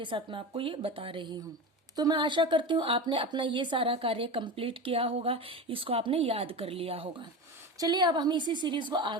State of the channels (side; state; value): both; normal; correlation 0.26